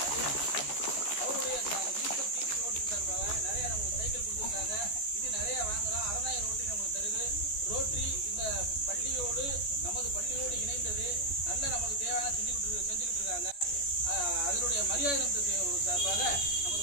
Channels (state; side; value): late; right; 14 ms